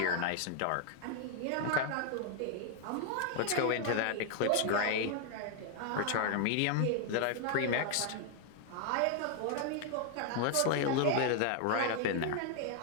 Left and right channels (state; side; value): different; both; correlation 0.00